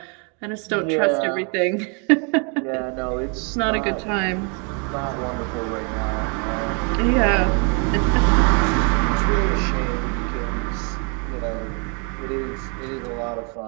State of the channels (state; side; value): quieter; left; 35.9 dB